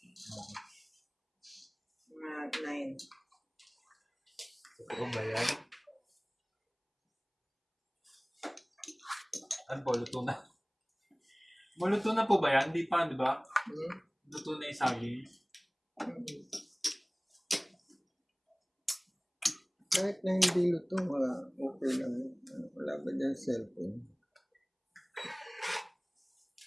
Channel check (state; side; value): identical; both; correlation 1.00